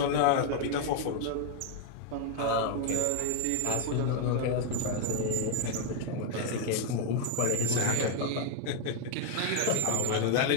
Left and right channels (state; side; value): different; both; correlation 0.01